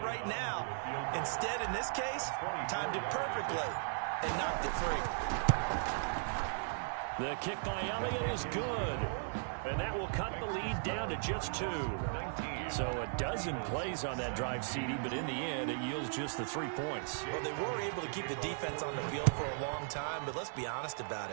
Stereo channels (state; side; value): silent; left; digital silence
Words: now. Instead, in this case, timed it perfectly and knocked it free. The kick by Elliott is good. And that will cut the lead down to just 2. So a dozen plays on that drive, CD, but in the end, it yields just the 3 points. Well, they were able to keep the defense on the field for a long time, but let's be honest about